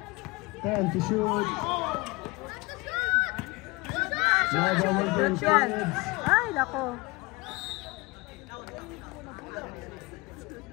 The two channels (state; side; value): quieter; right; 24.4 dB